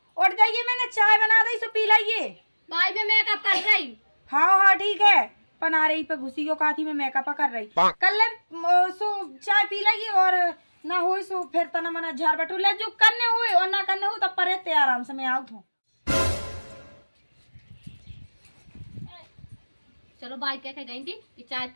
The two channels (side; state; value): both; inverted; correlation -1.00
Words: उठ जाइए मैंने चाय बना दी सो पी लाइए। भाई मैं मेकअप कर रही हाँ हाँ ठीक है पना रही पे घुसी को काथी में मेकअप कर रही कल सो चाय पी लाइए और ना हो सो फिर तना मना झाड़ बटू ले जो करने हुए और ना करने हो तब पर आराम से मैं आउट हूँ। चलो भाई कह के गई थी कि चाय